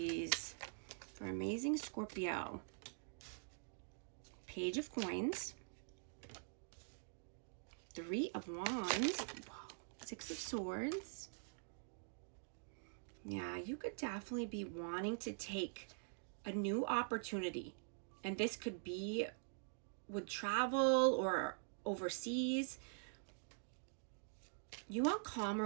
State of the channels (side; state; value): left; silent; digital silence